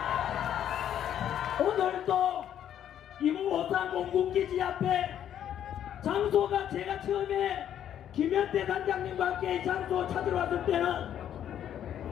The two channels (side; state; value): right; quieter; 10.2 dB